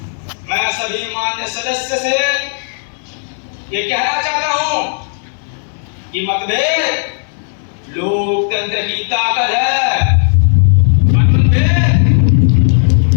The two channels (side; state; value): right; silent; digital silence